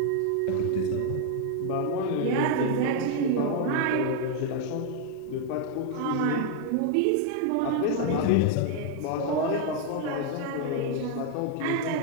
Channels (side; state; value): both; different; correlation 0.00